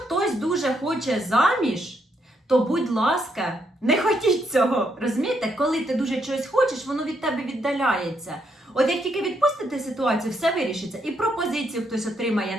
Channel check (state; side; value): normal; both; correlation 0.76